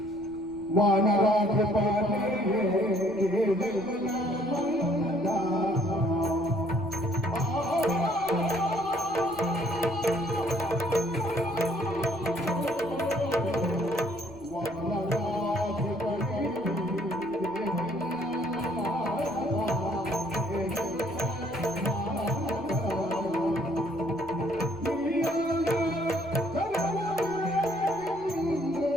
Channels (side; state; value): right; noise; rumble, 26 dB below the sound